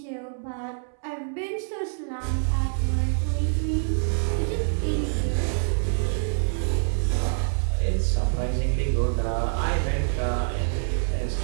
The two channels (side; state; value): left; silent; 61 dB below the other